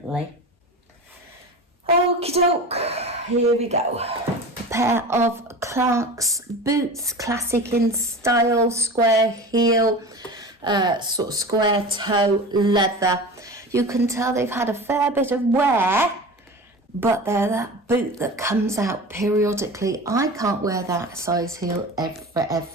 Okie doke, here we go. A pair of Clark's boots, classic in style, square heel, sort of square toe leather. You can tell they've had a fair bit of wear, but they're that boot that comes out periodically. I can't wear that size heel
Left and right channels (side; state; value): both; normal; correlation 0.33